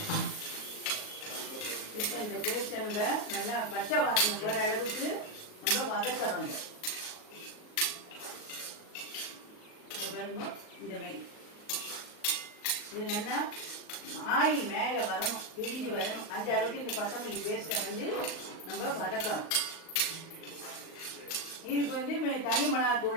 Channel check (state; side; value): late; right; 38 ms